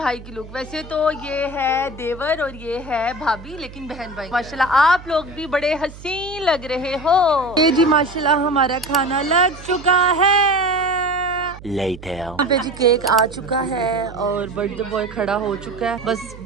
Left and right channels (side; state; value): right; noise; hum, 17 dB below the sound